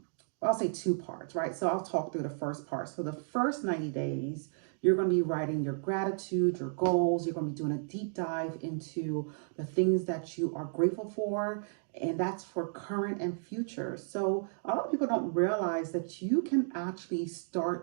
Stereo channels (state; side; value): silent; left; digital silence